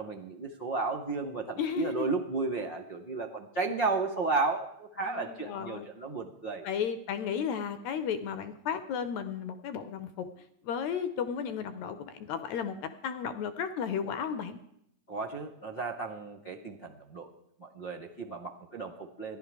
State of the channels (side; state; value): right; late; 9.0 ms